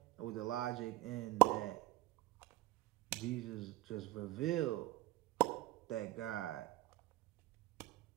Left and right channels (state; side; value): quieter; left; 17.9 dB